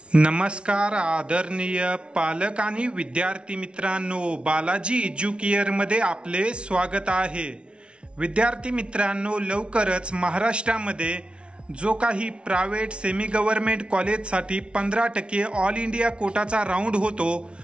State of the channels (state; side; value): late; left; 0.058 ms